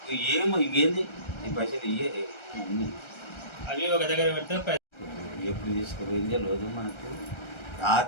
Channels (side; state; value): right; late; 1.3 ms